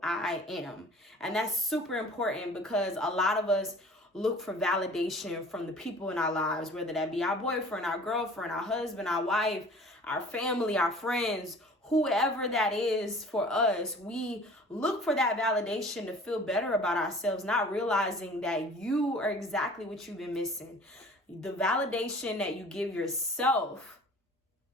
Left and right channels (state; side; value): normal; both; correlation 0.46